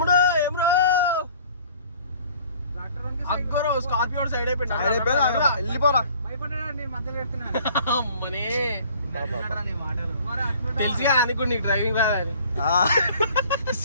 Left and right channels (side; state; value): both; inverted; correlation -0.53